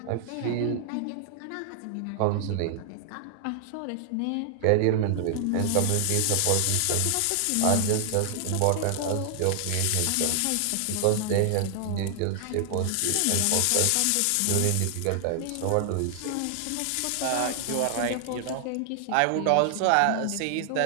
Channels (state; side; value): different; both; correlation 0.00